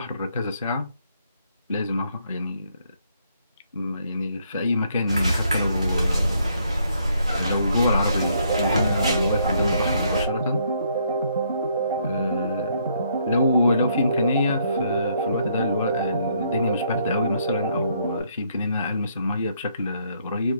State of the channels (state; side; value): inverted; both; correlation -0.70